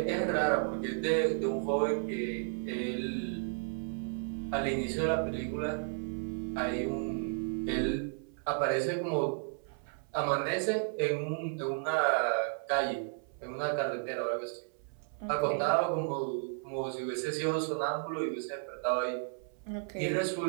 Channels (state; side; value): silent; left; 56 dB below the other